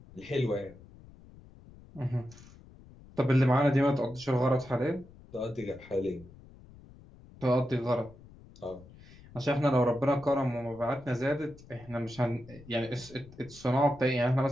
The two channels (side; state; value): left; noise; rumble, 21 dB below the sound